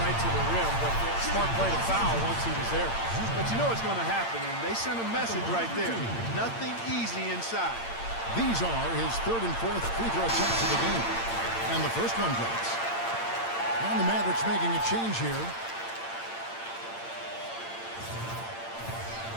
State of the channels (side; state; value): right; late; 8.8 ms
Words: right to the rim, but smart play to foul once he was there. But you know it's going to happen, and they sent a message right there. Nothing easy inside. These are his 3rd and 4th free throw attempts of the game. And the first one drops. And the Mavericks making a change here.